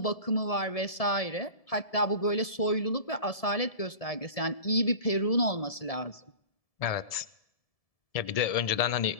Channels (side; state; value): right; late; 1.7 ms